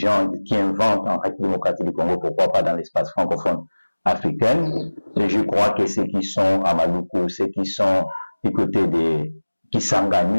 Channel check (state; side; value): inverted; both; correlation -1.00